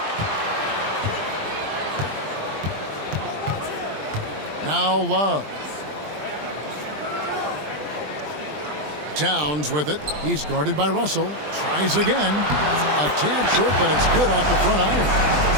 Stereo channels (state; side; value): late; left; 20 ms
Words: Now Love. Towns with it. He's guarded by Russell. Tries again. A tad short, but it's good off the front iron.